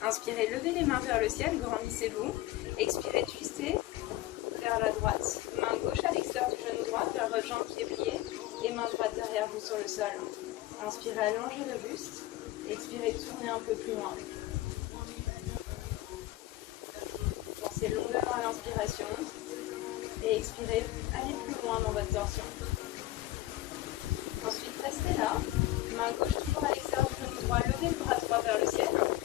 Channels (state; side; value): quieter; right; 16.2 dB